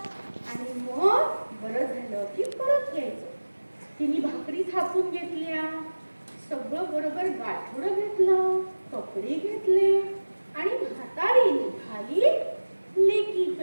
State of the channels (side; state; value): both; inverted; correlation -1.00